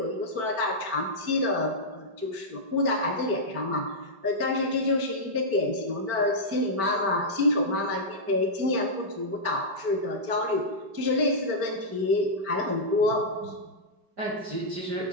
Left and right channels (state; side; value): late; left; 5.2 ms